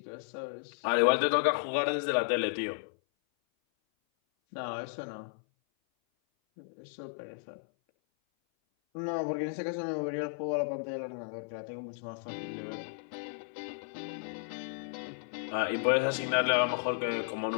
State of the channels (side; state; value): right; silent; 55 dB below the other